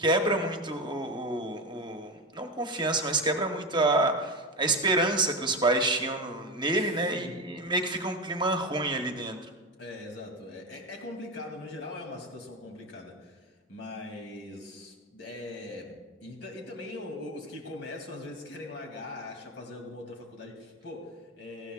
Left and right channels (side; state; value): both; normal; correlation 0.19